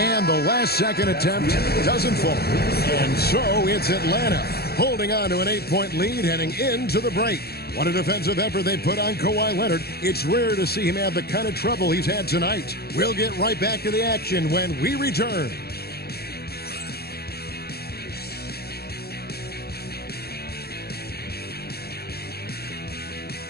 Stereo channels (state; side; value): late; right; 0.46 ms